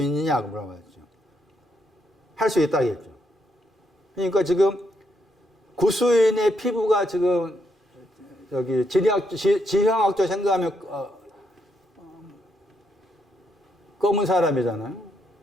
있느냐, 그 물어봤죠. 할 수 있다겠죠. 그러니까 지금 구수인의 피부가 지금 여기 지형학적 생각하면 검은 사람이잖아요.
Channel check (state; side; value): normal; both; correlation 0.77